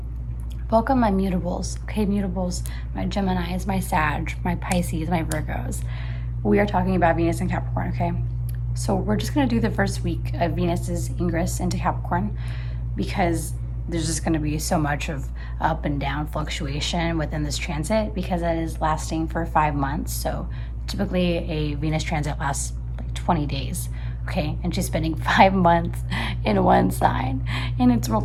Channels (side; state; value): both; identical; correlation 1.00